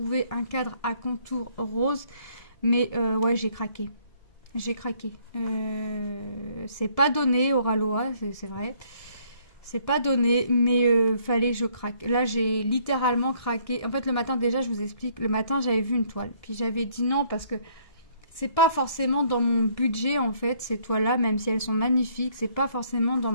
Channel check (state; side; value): late; right; 1.7 ms